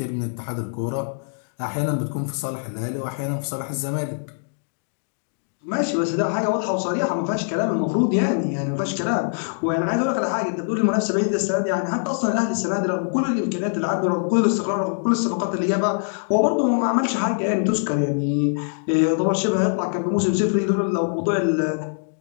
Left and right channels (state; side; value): silent; right; digital silence